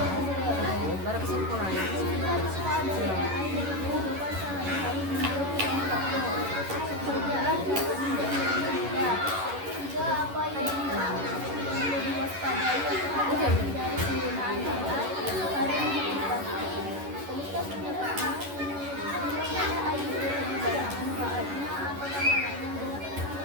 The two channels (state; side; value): late; left; 11 ms